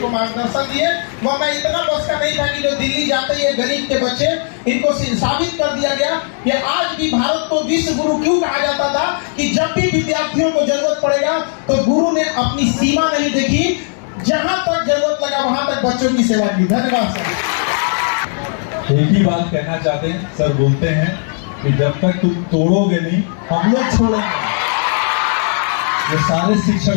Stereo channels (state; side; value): silent; right; 58 dB below the other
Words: मार्गदर्शन दिए, वह मैं इतना बस का नहीं था कि जो दिल्ली जाते ये गरीब के बच्चे, इनको साबित कर दिया गया कि आज भी भारत को विश्व गुरु क्यों कहा जाता था कि जब भी विद्यार्थियों को जरूरत पड़ेगा तो गुरु ने अपनी सीमा नहीं देखी, जहां तक जरूरत लगा वहां तक बच्चों की सेवा की। धन्यवाद सर। एक ही बात कहना चाहते हैं सर, बोलते हैं कि जब तक तुम तोड़ोगे नहीं हम लोग छोड़ेंगे। ये सारे